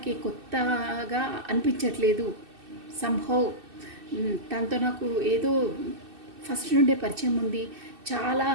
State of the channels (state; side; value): late; left; 2.6 ms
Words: కొత్తగా అనిపించట్లేదు. సంహౌ తనతో నాకు ఏదో ఫస్ట్ నుండే పరిచయం ఉంది. చాలా